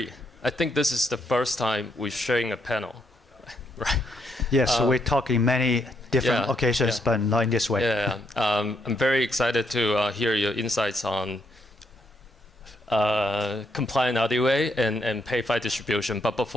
I think this is the first time we're sharing a panel, right? Yes, we talk in many different occasions, but not in this way. I'm very excited to hear your insights on compliant RWA and PayFi distribution. But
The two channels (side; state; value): both; normal; correlation 0.76